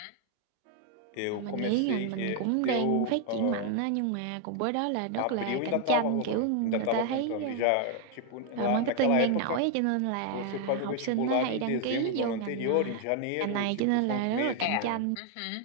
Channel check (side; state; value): both; different; correlation 0.00